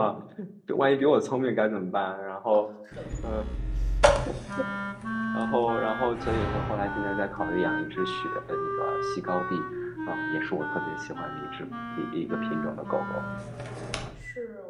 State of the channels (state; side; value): identical; both; correlation 1.00